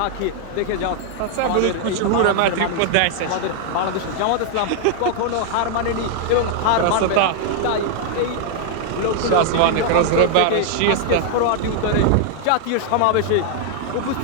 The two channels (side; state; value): both; different; correlation 0.00